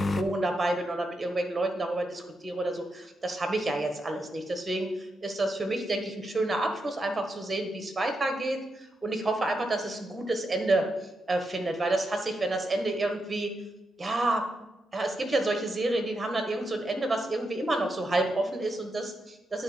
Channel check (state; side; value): normal; both; correlation 0.84